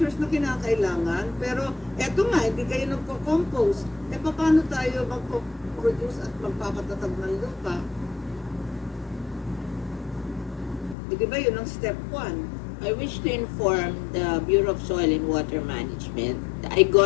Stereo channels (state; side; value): drops out; right; at 11.0 s